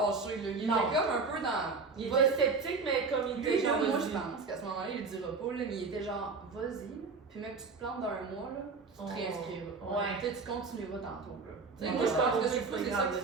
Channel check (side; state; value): left; quieter; 4.4 dB